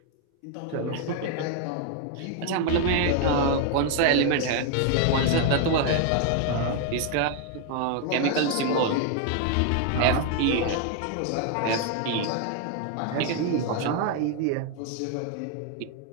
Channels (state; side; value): different; both; correlation 0.01